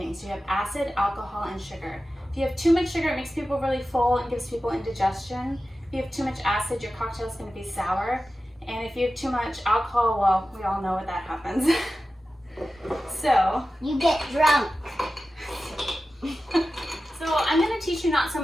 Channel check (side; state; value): both; normal; correlation 0.94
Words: You have acid, alcohol, and sugar. If you have too much sugar, it makes people really full and gives people indigestion. If you have too much acid, your cocktail is going to be sour. And if you have too much alcohol, well, we all know what that happens. So you get drunk. So I'm going to teach you not so